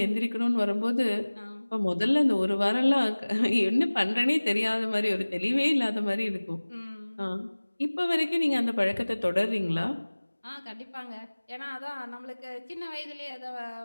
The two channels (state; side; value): inverted; both; correlation -1.00